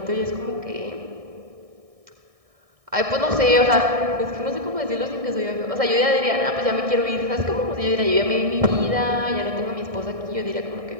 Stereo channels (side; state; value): left; late; 1.6 ms